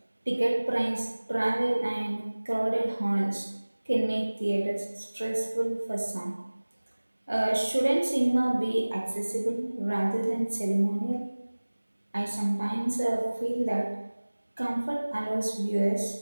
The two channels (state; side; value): inverted; both; correlation -1.00